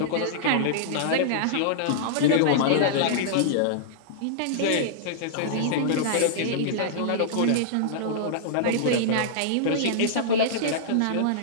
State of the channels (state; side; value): different; both; correlation -0.02